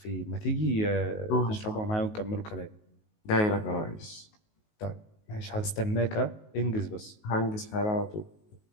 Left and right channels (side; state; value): right; late; 19 ms